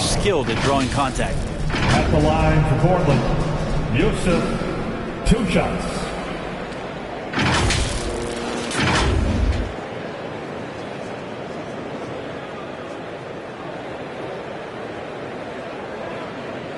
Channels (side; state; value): both; identical; correlation 1.00